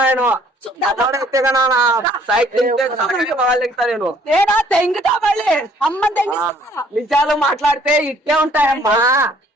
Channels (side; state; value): both; normal; correlation 0.60